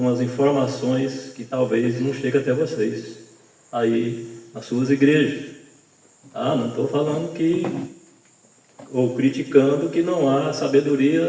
informações que talvez não cheguem até vocês, aí nas suas igrejas. Não estou falando ou criticando que não há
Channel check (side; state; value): both; identical; correlation 1.00